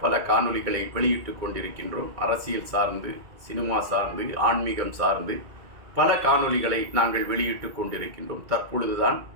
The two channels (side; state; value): left; late; 2.2 ms